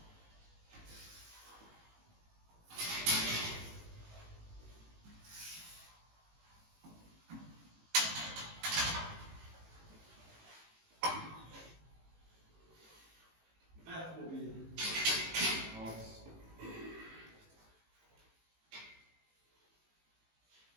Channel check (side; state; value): left; late; 18 ms